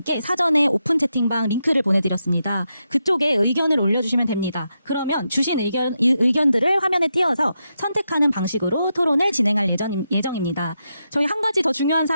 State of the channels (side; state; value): both; inverted; correlation -0.85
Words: 사전에 오픈 채팅방 링크를 보내드렸습니다. 그쪽에 의견을 올려주시면 됩니다. 그러면 주신 의견들을 화면에 띄워서 선택하는 방식으로 토론을 진행할 예정입니다. 저희 한 가지 더 중요한